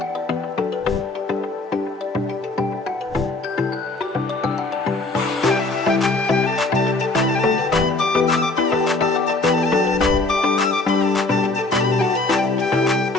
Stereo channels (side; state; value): right; quieter; 3.1 dB